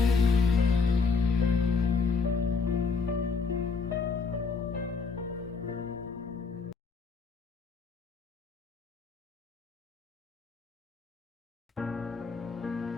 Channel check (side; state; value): right; quieter; 4.8 dB